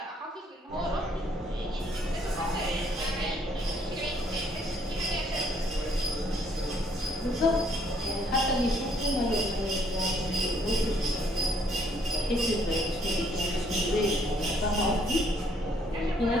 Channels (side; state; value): both; normal; correlation 0.66